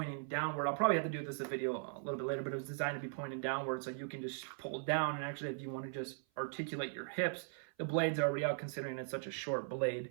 downward. I'll probably have to do this video a little bit later, but it was designed to be pointing downward, so you can just pull down. And actually, if you want to just articulate your hips, the blade's already out, considering it's such a short blade.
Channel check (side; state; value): left; silent; 52 dB below the other